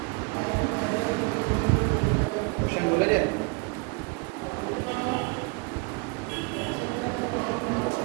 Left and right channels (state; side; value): quieter; left; 31.1 dB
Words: क्वेश्चन बोला जाए।